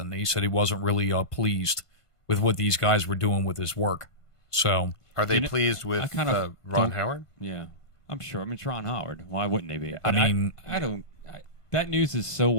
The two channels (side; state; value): right; late; 1.5 ms